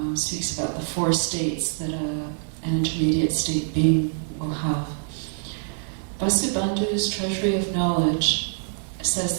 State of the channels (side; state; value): left; silent; digital silence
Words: speaks about the four states that an intermediate state being will have. Vasubandhu's Treasury of Knowledge says